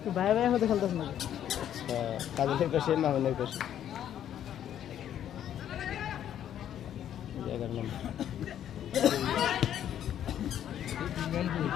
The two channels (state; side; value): quieter; right; 10.4 dB